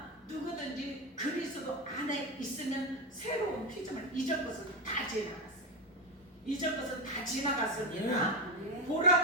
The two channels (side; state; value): both; normal; correlation 0.13